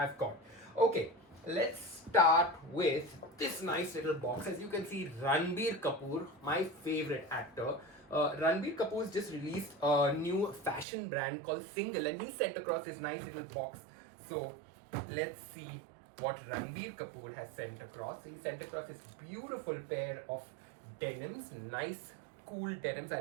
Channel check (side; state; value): left; drops out; at 10.9 s